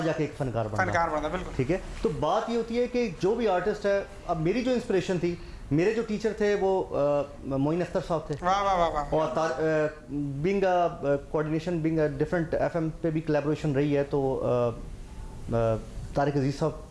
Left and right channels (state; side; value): identical; both; correlation 1.00